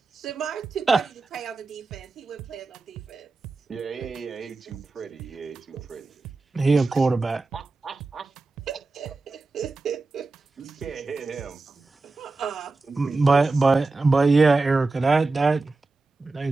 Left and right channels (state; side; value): quieter; left; 3.6 dB